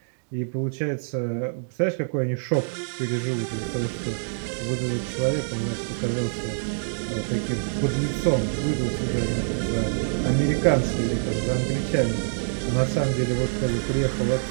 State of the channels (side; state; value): left; silent; digital silence